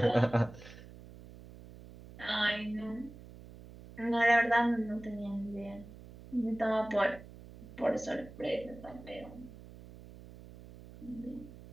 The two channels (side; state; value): right; noise; hum, 17 dB below the sound